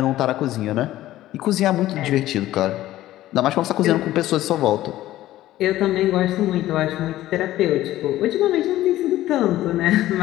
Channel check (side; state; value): right; quieter; 14.8 dB